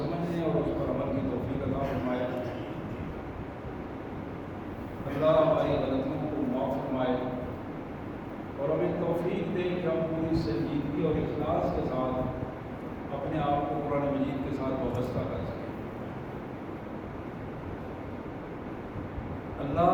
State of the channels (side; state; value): both; identical; correlation 1.00